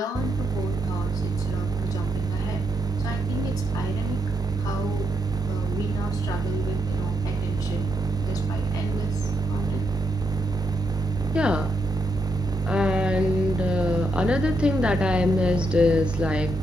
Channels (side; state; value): both; normal; correlation 0.80